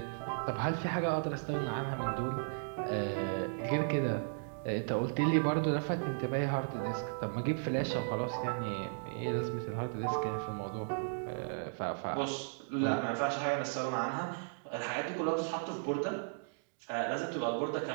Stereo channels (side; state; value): left; silent; digital silence